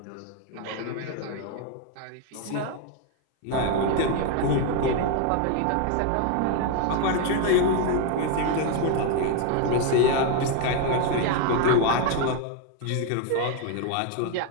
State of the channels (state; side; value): different; both; correlation 0.01